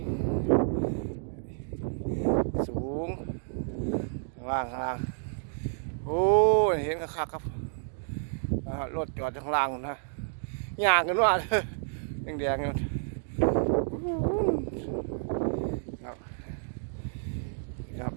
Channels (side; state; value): left; silent; digital silence